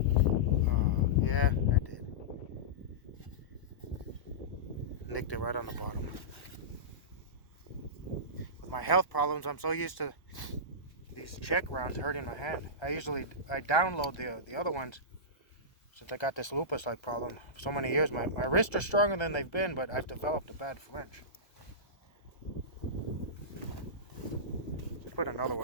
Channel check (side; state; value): right; late; 1.3 ms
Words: Yeah, I did. Nicked it right on the bottom. With my health problems, I'm so used to these check rounds hurting my hand. I download the other ones since I got this lupus-like problem for so many years. My wrists are stronger than they've been, but I've developed a bad flinch. Let's put another